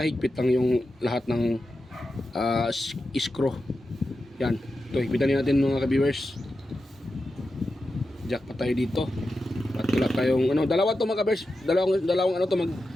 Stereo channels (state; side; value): normal; both; correlation 0.90